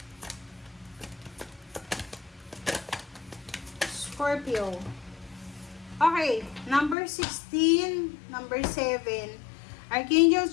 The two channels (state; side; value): drops out; right; at 7.0 s